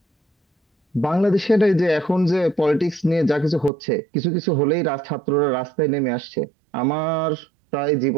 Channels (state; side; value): drops out; left; at 3.7 s